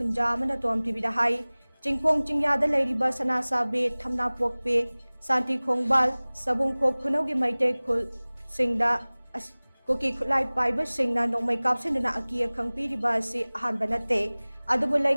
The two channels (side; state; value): both; inverted; correlation -1.00